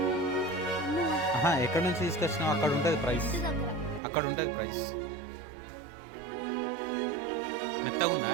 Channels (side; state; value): left; drops out; at 4.0 s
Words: ఎక్కడి నుంచి తీసుకొచ్చినావు అక్కడ ఉంటుంది ప్రైస్, అక్కడ ఉంటుంది ప్రైస్. మెత్తగా ఉందా?